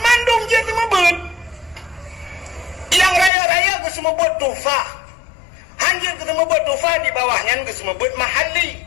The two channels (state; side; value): drops out; right; at 3.3 s